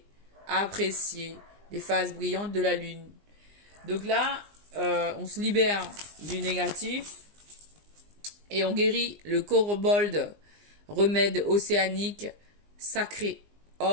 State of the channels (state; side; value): late; left; 20 ms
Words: apprécier les phases brillantes de la lune. Donc là, on se libère du négatif et on guérit le kobold, remède océanique, sacré,